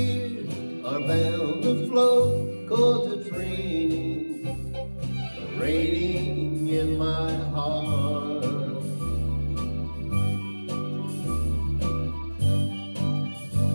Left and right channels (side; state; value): both; inverted; correlation -1.00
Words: are bound to flow, 'cause it's raining, raining in my heart.